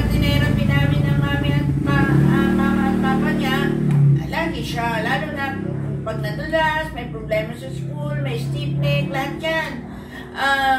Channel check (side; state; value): both; identical; correlation 1.00